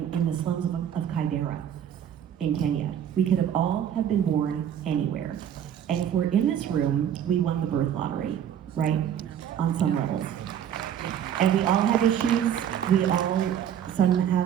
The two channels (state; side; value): quieter; left; 9.6 dB